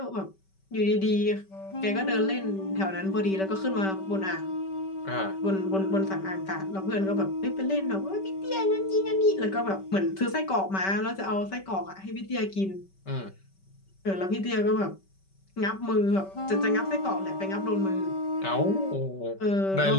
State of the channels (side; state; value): right; late; 5.2 ms